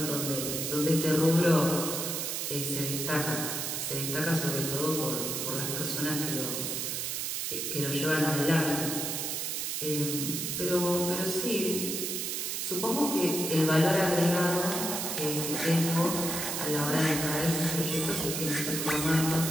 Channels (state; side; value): noise; right; hiss, 2 dB below the sound